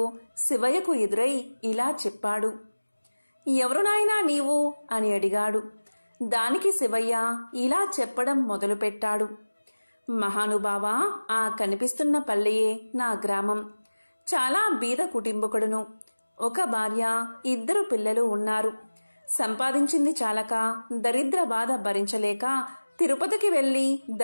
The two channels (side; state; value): both; inverted; correlation -1.00